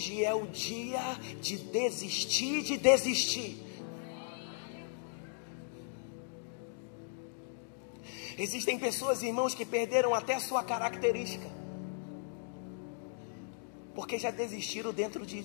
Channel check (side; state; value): right; silent; digital silence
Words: é o dia de desistir. Existem pessoas, irmãos, que perderam até a sua característica, porque já desistiram dentro